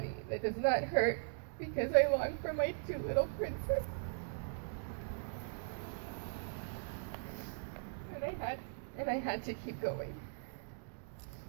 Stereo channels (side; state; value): left; silent; digital silence